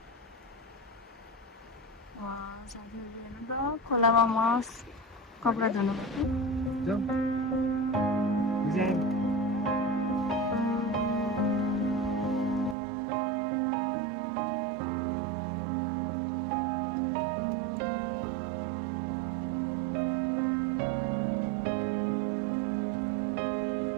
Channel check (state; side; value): drops out; left; at 12.8 s